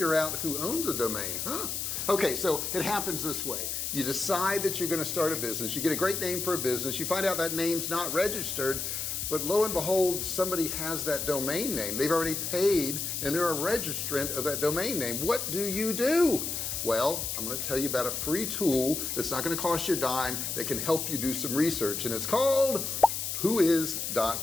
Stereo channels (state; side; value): noise; left; hiss, 3 dB below the sound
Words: out who owns a domain. Okay, so it happens this way. You decide that you're going to start a business, you get a great name for a business, you find out that name's not registered, but lo and behold, somebody has that domain name. They've already paid and they're a registrant of that domain name. What do? Well, I'm going to tell you about a free tool that's not going to cost you a dime, that can help you do some research, and it's called